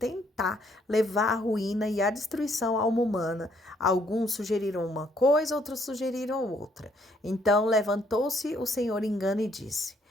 levar à ruína e à destruição a alma humana. Alguns sugeriram uma coisa, outros sugeriram outra. Então levantou-se o Senhor engano e disse:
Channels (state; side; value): normal; both; correlation 0.68